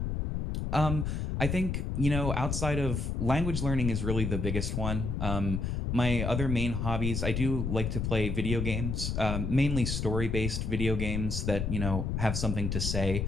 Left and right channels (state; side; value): noise; left; rumble, 1 dB below the sound